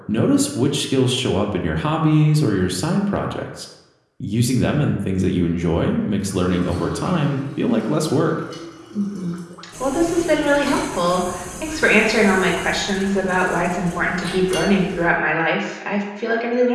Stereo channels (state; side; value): identical; both; correlation 1.00